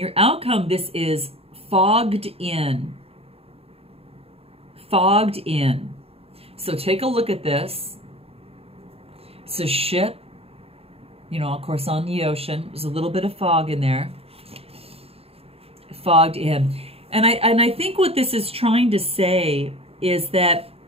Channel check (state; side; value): late; left; 0.28 ms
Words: outcome, this is fogged in. Fogged in. So take a look at this. It's a ship, you know, of course, on the ocean. There's a little bit of fog in there. Fogged in. And I think what this is trying to say is that